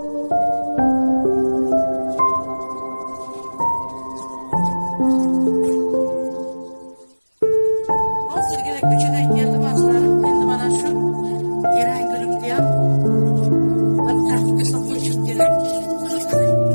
Hozirgina ko'chadan keldim azlarim. Endi mana shu Eran gulimni ham bir tarafga soqolishim kerak.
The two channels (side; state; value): both; inverted; correlation -1.00